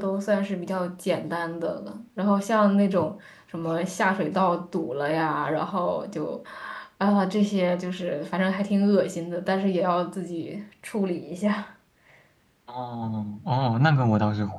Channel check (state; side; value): identical; both; correlation 1.00